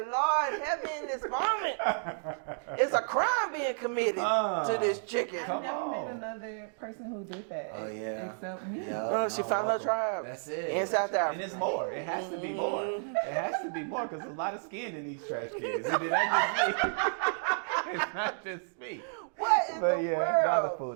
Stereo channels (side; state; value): left; silent; digital silence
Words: Lord, help me in this moment. It's a crime being committed to this chicken. I've never met another person who did that except me. Yeah. She found her tribe. That's it. In South Africa. And it's more. It has to be more. It has to be more because there's a lot of skin in these trash cans. It's not just me. What in But the yeah,